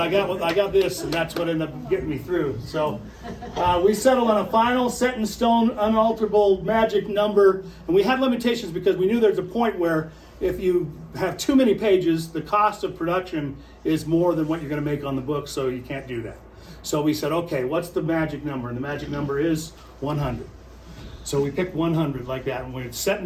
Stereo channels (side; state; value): both; identical; correlation 1.00